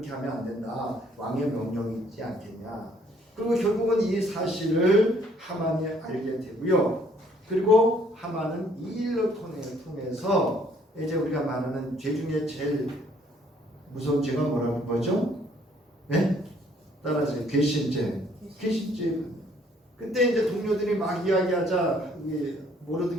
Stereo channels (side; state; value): both; normal; correlation 0.63